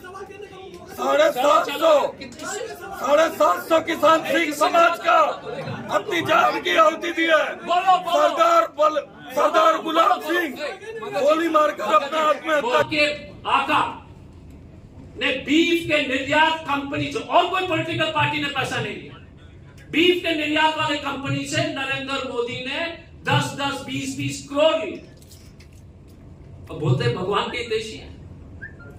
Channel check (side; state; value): both; identical; correlation 1.00